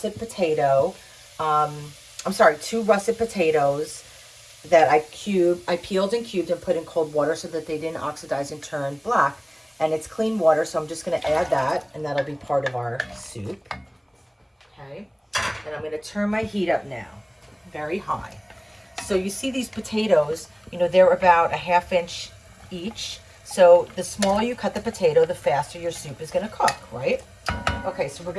potato, two russet potatoes that I peeled and cubed and put in cold water so that they didn't oxidize and turn black. And it's clean water, so I'm just going to add that, and that'll be part of our soup. Okay, and I'm going to turn my heat up now, very high. So you see these potatoes, they're about a ½ inch each. So the smaller you cut the potato, the faster your soup is going to cook, right? Okay, so we're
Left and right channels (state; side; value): identical; both; correlation 1.00